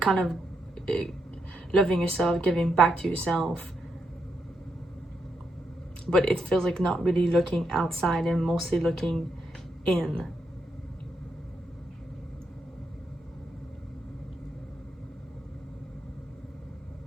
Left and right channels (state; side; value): normal; both; correlation 0.81